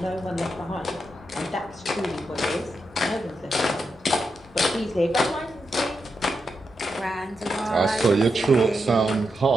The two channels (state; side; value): normal; both; correlation 0.85